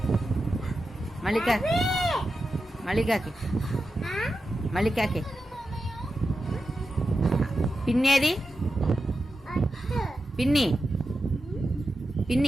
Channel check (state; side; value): normal; both; correlation 0.90